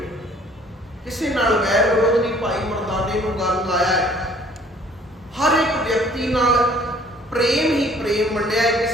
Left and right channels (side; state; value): both; normal; correlation 0.56